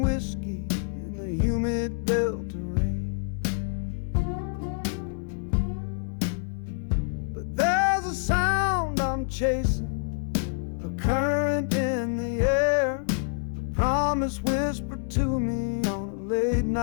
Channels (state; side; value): silent; right; digital silence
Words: whiskey in the humid Delta rain. There's a sound I'm chasing, a current in the air, a promise whispered to me on a late